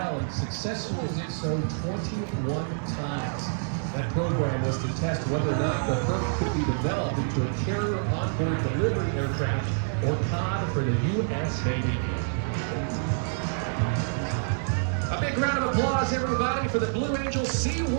and successfully did so 21 times. That program was to test whether or not the Herc could be developed into a carrier onboard delivery aircraft or COD for the U.S. Navy. A big round of applause, everybody, for the Blue Angel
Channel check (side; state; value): left; silent; digital silence